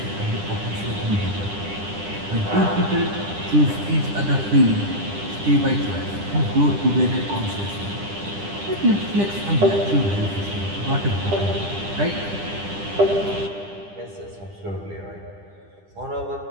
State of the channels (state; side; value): late; left; 10 ms